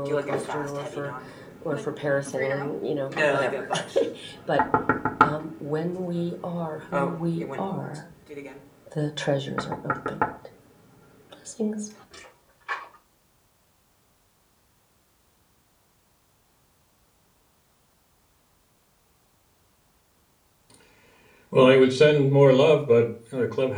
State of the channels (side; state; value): both; identical; correlation 1.00